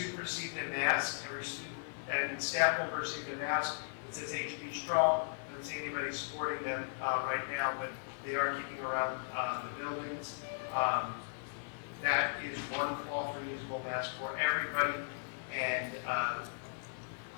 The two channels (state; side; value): silent; right; 53 dB below the other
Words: received a mask. Every student and staff member received a mask that says HB Strong. I don't see anybody supporting them right now, but they are keeping around the buildings. That is one cloth reusable mask for everybody, and